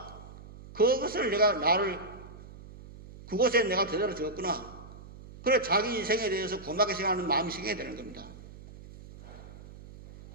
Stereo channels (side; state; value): right; noise; hum, 17 dB below the sound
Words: 그것을 그곳에 내가 제대로 적었구나. 그래 자기 인생에 대해서 고맙게 생각하는 마음이 생겨야 되는 겁니다.